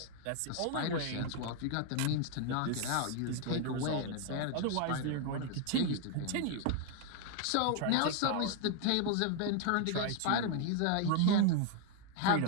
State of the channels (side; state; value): both; different; correlation 0.00